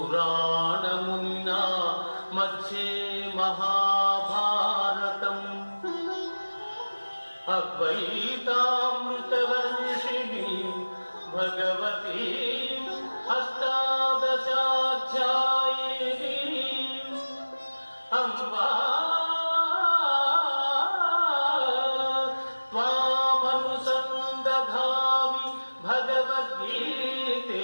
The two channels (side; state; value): both; inverted; correlation -1.00